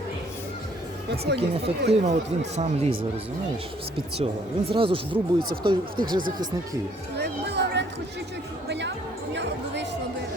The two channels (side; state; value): both; normal; correlation 0.63